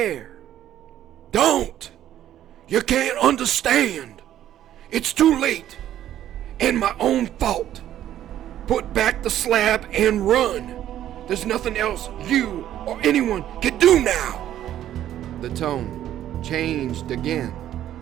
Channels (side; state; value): left; quieter; 11.8 dB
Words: "Don't! You can't understand! It's too late, and my own fault. Put back the slab and run. There's nothing else you or anyone can do now." The tone changed again,